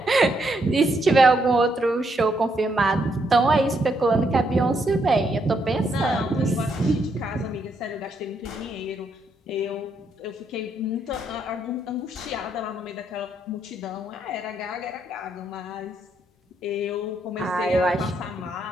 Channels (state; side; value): normal; both; correlation 0.76